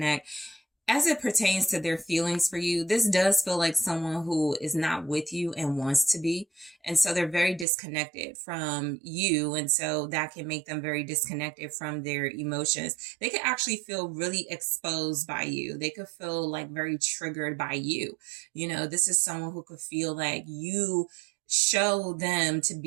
As it pertains to their feelings for you, this does feel like someone who is not with you and wants to be. And so they're very disconnected from you. And so that can make them very disconnected from their emotions. They could actually feel really exposed by you. They could feel like very triggered by you. You know, this is someone who could feel like you show them to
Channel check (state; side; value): drops out; left; at 7.7 s